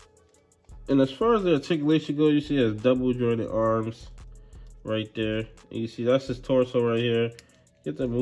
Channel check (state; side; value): identical; both; correlation 1.00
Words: you see it has double jointed arms right there. And you see that's his torso right here. Get to